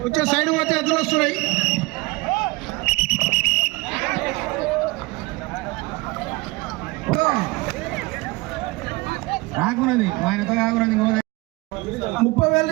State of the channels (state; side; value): quieter; left; 23.6 dB